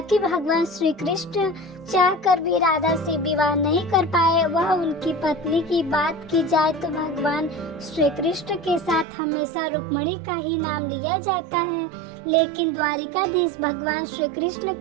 भगवान श्री कृष्ण चाहकर भी राधा से विवाह नहीं कर पाए। वह उनकी पत्नी की बात की जाए तो भगवान श्री कृष्ण के साथ हमेशा रुक्मिणी का ही नाम लिया जाता है, लेकिन द्वारिकाधीश भगवान श्री कृष्ण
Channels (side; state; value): left; drops out; at 9.1 s